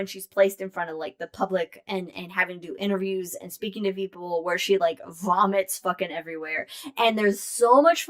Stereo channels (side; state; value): both; identical; correlation 1.00